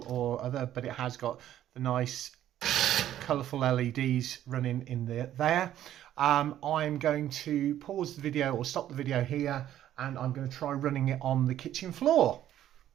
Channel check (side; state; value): left; quieter; 11.9 dB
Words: or other, but it has got the nice colourful LEDs running in there. I'm going to pause the video or stop the video here, and I'm going to try running it on the kitchen floor.